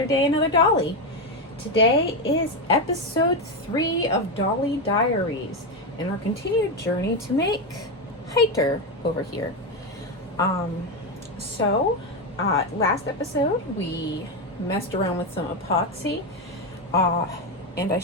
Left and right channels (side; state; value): both; normal; correlation 0.10